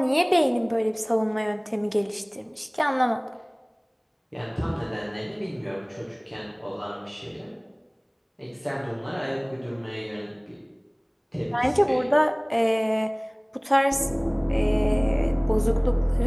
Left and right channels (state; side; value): identical; both; correlation 1.00